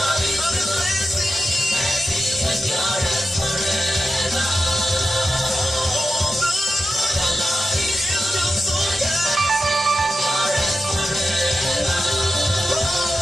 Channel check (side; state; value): both; normal; correlation 0.92